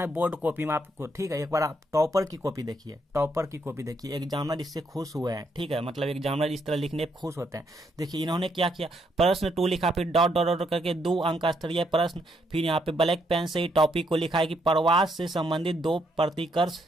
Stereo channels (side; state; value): both; normal; correlation 0.74